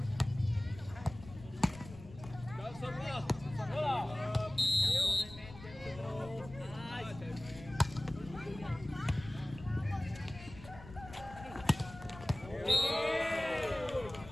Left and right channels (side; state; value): left; noise; rumble, 16 dB below the sound